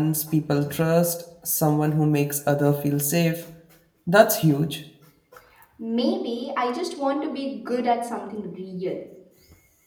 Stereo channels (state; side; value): identical; both; correlation 1.00